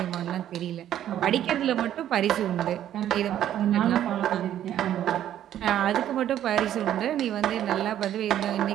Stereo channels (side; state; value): left; quieter; 11.3 dB